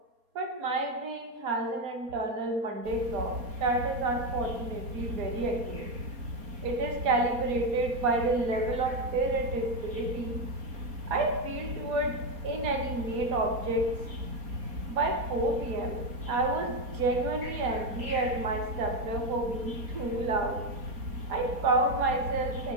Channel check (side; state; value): left; late; 4.2 ms